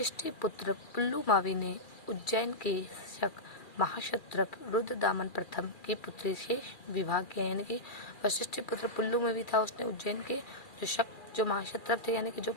पुत्र पुल्लुमावी ने उज्जैन के शक महाक्षत्रप रुद्रदामन प्रथम की पुत्री से विवाह किया। यानी कि वशिष्ठी पुत्र पुल्लुमावी था, उसने उज्जैन के जो महाक्षत्रप थे यानी कि जो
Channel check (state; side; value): late; right; 2.4 ms